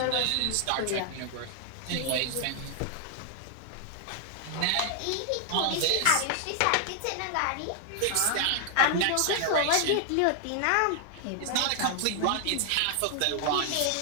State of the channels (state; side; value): different; both; correlation 0.00